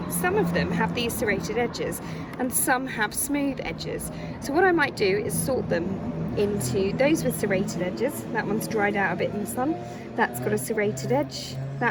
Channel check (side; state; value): both; identical; correlation 1.00